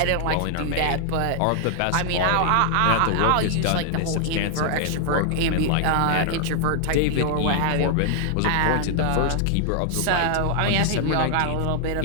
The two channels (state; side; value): different; both; correlation -0.01